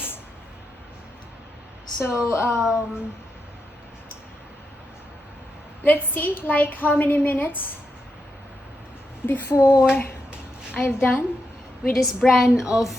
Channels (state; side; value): normal; both; correlation 0.85